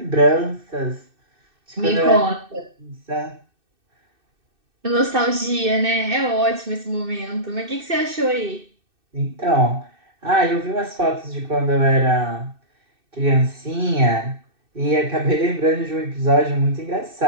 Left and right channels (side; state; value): left; late; 2.6 ms